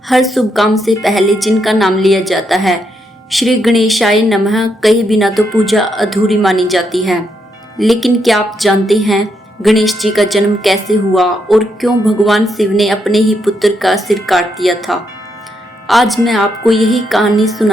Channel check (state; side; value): normal; both; correlation 0.79